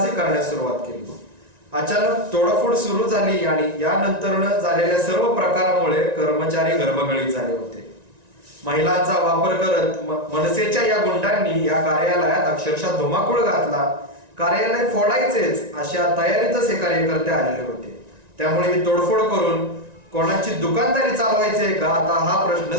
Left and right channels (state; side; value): late; left; 1.9 ms